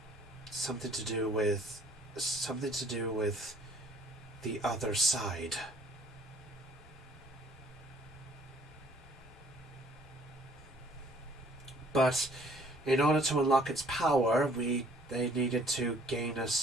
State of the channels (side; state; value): both; normal; correlation 0.58